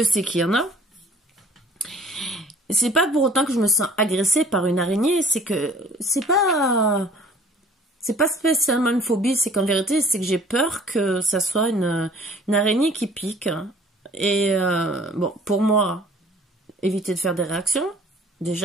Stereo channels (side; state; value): both; normal; correlation 0.53